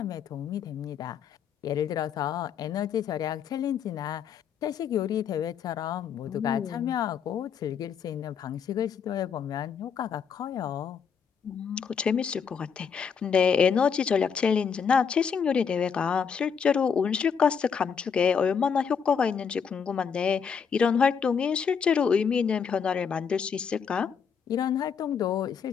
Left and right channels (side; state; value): right; quieter; 6.7 dB